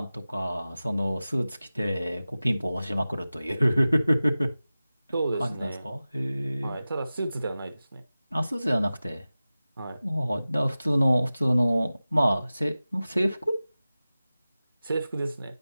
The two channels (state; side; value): inverted; both; correlation -0.96